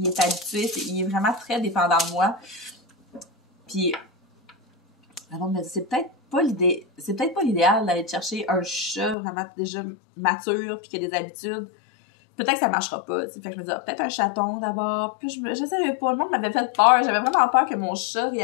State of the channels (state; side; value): drops out; right; at 9.2 s